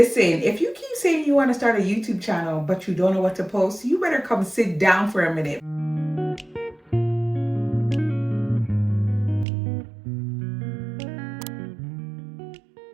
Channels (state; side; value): drops out; left; at 9.5 s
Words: if you keep saying you want to start a YouTube channel, but you don't know what to post, you better come sit down for a minute.